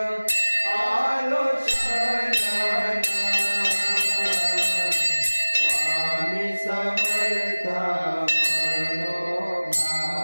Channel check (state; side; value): inverted; both; correlation -1.00